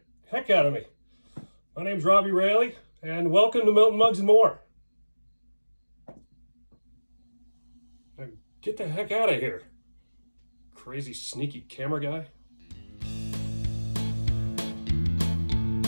heck out of me. My name's Robbie Rayleigh, and welcome to Milton Mugs and More. Now, get the heck out of here. Crazy, sneaky camera guy.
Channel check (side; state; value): both; inverted; correlation -1.00